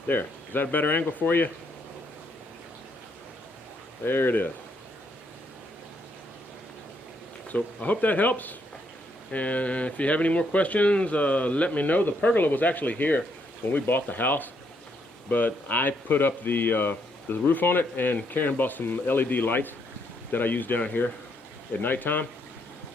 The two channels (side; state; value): both; normal; correlation 0.74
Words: There. Is that a better angle for you? There it is. So I hope that helps. And if you have any more questions, let me know. The pergola was actually here when we bought the house, but I put up the roof on it, and Karen bought some LED lights that I use down here at nighttime.